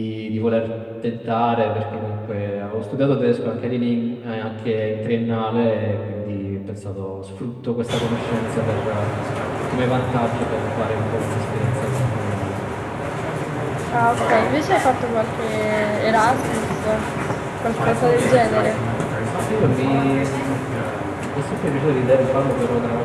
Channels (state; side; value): identical; both; correlation 1.00